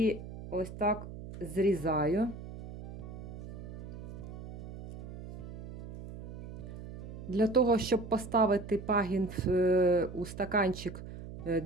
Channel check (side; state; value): right; noise; hum, 12 dB below the sound